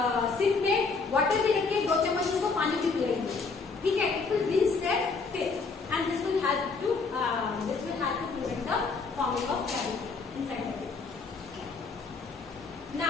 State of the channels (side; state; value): right; quieter; 4.5 dB